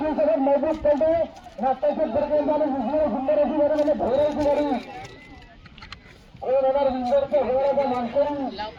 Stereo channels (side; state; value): both; identical; correlation 1.00